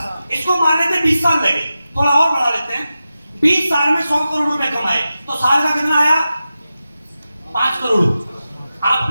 इसको मान लेते 20 साल लगे, थोड़ा और बढ़ा लेते हैं। 20 साल में 100 करोड़ रुपए कमाए, तो साल का कितना आया? 5 करोड़। आप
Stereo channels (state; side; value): inverted; both; correlation -0.92